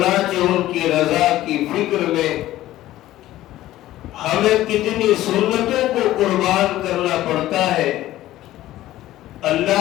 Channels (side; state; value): right; quieter; 14.8 dB